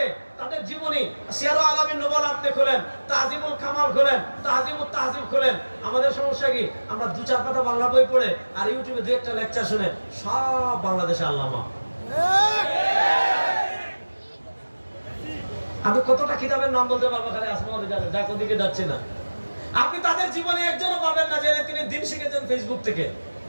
তাদের জীবনী সিয়ারুল আলামিন নুবালা আপনি খোলেন, তাহজিবুল কামাল খোলেন, তাহজিবুত তাহজিব খোলেন। আমাদের সমস্যা কি, আমরা দু চার পাতা বাংলা বই পড়ে আর ইউটিউবে দু একটা লেকচার শুনে সব বাংলাদেশে আল্লামা। আমি কতটা কিতাবের নাম বলতে পারবো, খালি আসমানে যাবে, যা কোদিকে যাচ্ছে না। আপনি তাদের জীবনে একজনও পাবেন না যে তিনি দিন শিখেছেন ফেসবুক থেকে।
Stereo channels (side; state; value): both; inverted; correlation -1.00